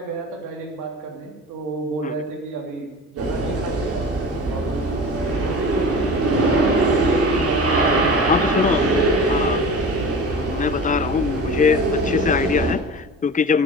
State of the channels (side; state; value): both; normal; correlation 0.34